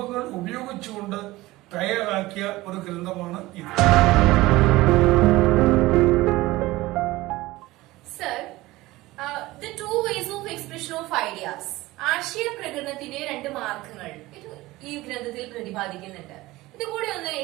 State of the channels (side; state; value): left; quieter; 18.9 dB